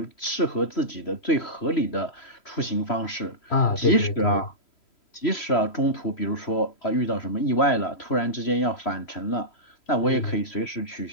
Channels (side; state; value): right; late; 3.0 ms